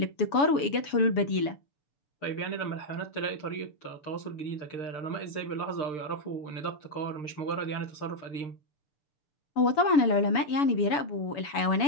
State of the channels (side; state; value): right; late; 7.0 ms